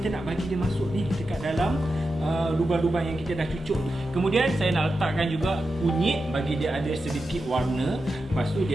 nak bagi dia masuk ni dekat dalam lubang-lubang yang kita dah cucuk. Kemudian saya nak letakkan juga kunyit bagi dia ada sedikit warna. Lepas tu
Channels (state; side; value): normal; both; correlation 0.90